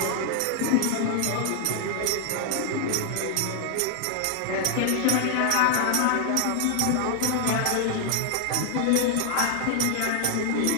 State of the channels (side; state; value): both; different; correlation 0.00